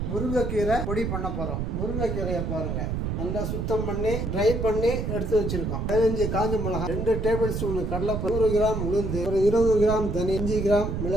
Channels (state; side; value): noise; right; rumble, 2 dB below the sound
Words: முருங்கைக்கீரை பொடி பண்ண போறோம். முருங்கைக்கீரையை பாருங்க, நல்லா சுத்தம் பண்ணி ட்ரை பண்ணி எடுத்து வச்சிருக்கோம். 15 காஞ்ச மிளகாய், 2 டேபிள் ஸ்பூன் கடலைப்பருப்பு, 100 கிராம் உளுந்து, ஒரு 20 கிராம் தனி, 5 கிராம்